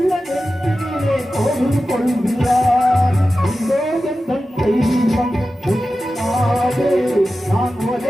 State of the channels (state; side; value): normal; both; correlation 0.93